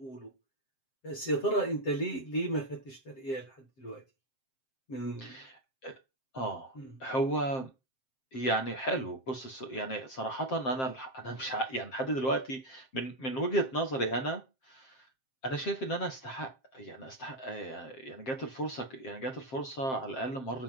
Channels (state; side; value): late; right; 7.6 ms